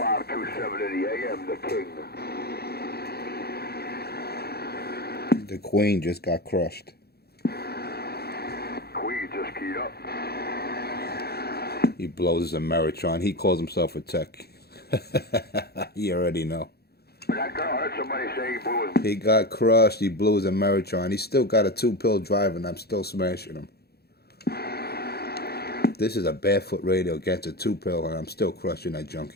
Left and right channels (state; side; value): late; right; 0.46 ms